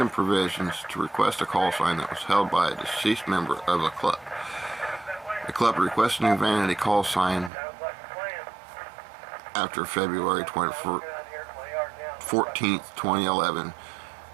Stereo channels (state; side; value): drops out; left; at 7.5 s